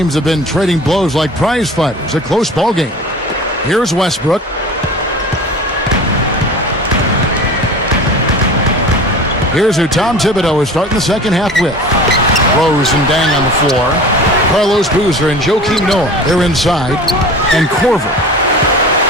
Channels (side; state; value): both; normal; correlation 0.38